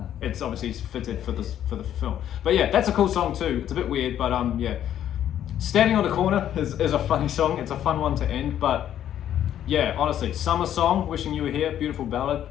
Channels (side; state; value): right; quieter; 10.8 dB